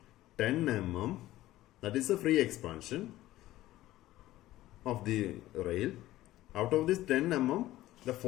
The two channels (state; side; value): quieter; right; 15.6 dB